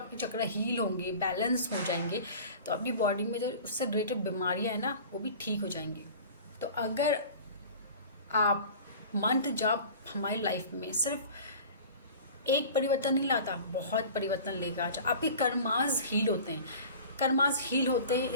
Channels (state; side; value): inverted; both; correlation -0.40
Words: चक्र हील होंगे, बैलेंस हो जाएंगे, तो आपकी बॉडी में जो उससे रिलेटेड बीमारियाँ हैं ना, वो भी ठीक हो जाएंगी। तो अगर आप मंत्र जाप हमारी लाइफ में सिर्फ एक परिवर्तन नहीं लाता, बहुत परिवर्तन लेगा। आपके कर्मास हील होते हैं, कर्मास हील होते हैं,